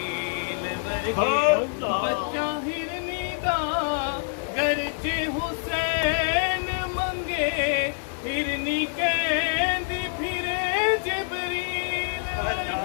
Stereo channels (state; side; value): silent; right; 61 dB below the other